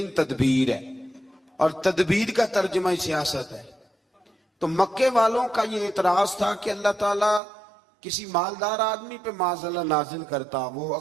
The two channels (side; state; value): left; drops out; at 7.4 s